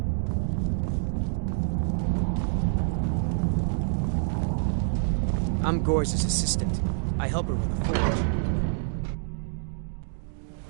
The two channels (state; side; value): silent; left; digital silence